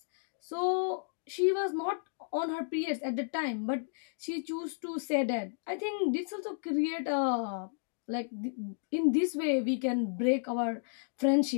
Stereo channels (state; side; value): silent; right; digital silence